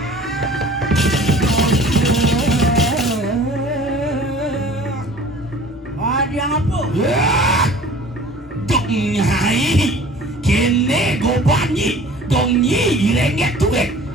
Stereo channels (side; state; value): both; normal; correlation 0.46